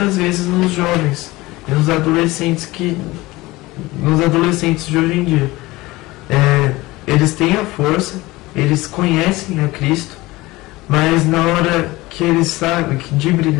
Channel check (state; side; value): quieter; right; 20.1 dB